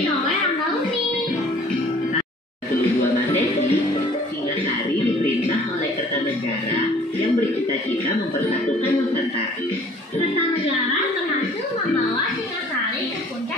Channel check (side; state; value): both; normal; correlation 0.53